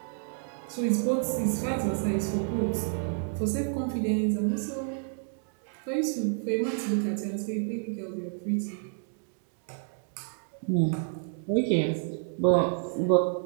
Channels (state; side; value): silent; left; 58 dB below the other